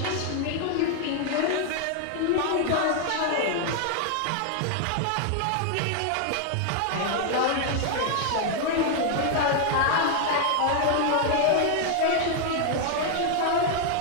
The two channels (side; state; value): both; different; correlation 0.00